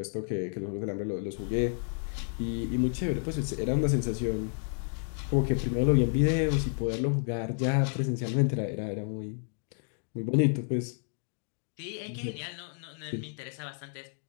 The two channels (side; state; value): right; silent; 57 dB below the other